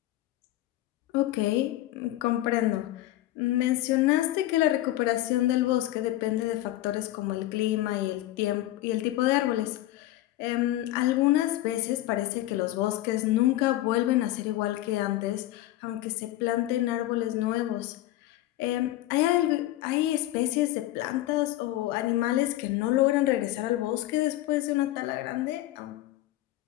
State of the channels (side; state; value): right; quieter; 15.5 dB